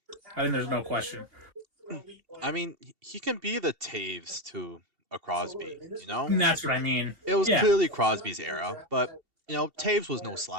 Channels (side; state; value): left; late; 2.7 ms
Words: think there's no question. I mean, he can be the Taves to a Crosby, you know? And that's what I mean. It was Yeah. clearly Crosby's era, but you know, Taves was no